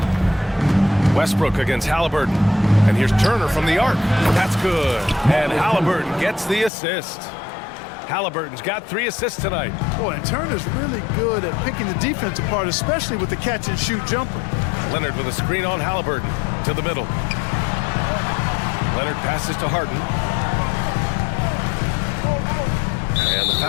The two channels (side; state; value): right; drops out; at 6.7 s